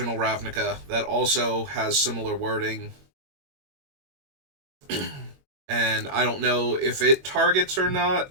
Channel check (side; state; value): left; late; 21 ms